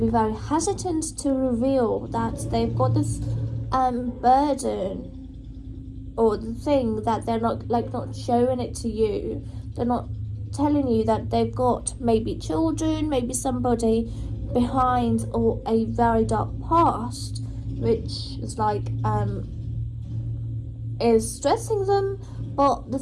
very hesitant to reveal that they've got this burden, or the thing that they're not showing it to you. They're not telling you that they've got maybe children, maybe somebody behind, or a very dark past, which is is stressing them. But the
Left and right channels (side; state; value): both; identical; correlation 1.00